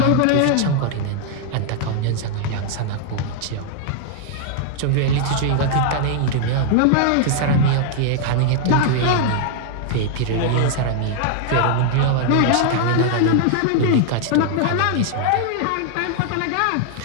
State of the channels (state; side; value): different; both; correlation 0.00